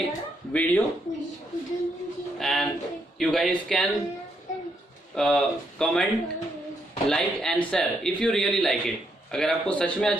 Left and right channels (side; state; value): both; normal; correlation 0.76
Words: video and you guys can comment, like and share if you really like it. अगर आपको सच में